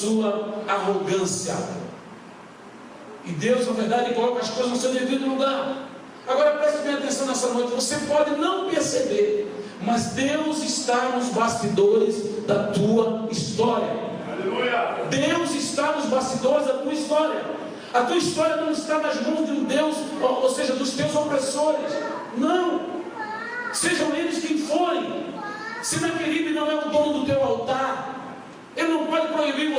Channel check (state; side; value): identical; both; correlation 1.00